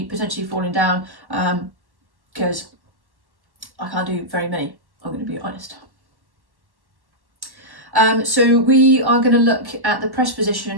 potentially falling down, because I can't do very many, I'm going to be honest. So we are going to look at the press position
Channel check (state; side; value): late; left; 1.1 ms